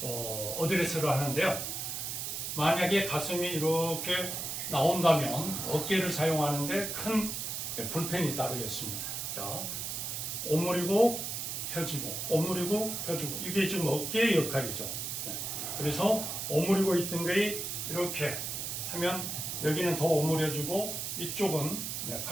어드레스를 하는데요. 만약에 가슴이 이렇게 나온다면 어깨를 사용하는데 큰 불편이 따르겠습니다. 자, 오므리고 펴지고, 오므리고 펴지고, 이게 지금 어깨의 역할이죠. 그래서 오므리고 있던 게 이렇게 하면 여기는 더 오므려지고 이쪽은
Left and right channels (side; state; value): right; noise; hiss, 4 dB below the sound